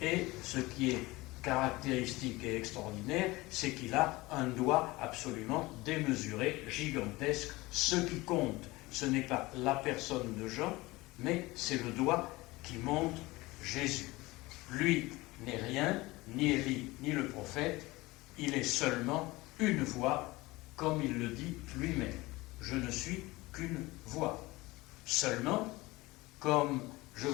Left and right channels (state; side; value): quieter; right; 21.0 dB